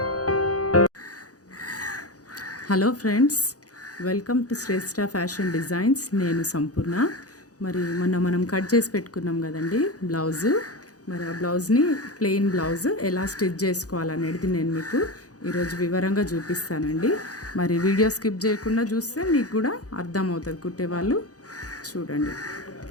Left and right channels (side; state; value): right; late; 0.67 ms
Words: friends, welcome to Shreshtha fashion designs. నేను సంపూర్ణ. మరి మొన్న మనం కట్ చేసి పెట్టుకున్నాం కదండి బ్లౌజు. మరి ఆ బ్లౌజ్ని ప్లెయిన్ బ్లౌజ్ ఎలా స్టిచ్ చేసుకోవాలనేది నేను మీకు ఈరోజు వివరంగా చూపిస్తానండి. మరి వీడియో స్కిప్ చేయకుండా చూస్తే మీకు కూడా అర్థమవుతుంది. కుట్టేవాళ్ళు చూడండి.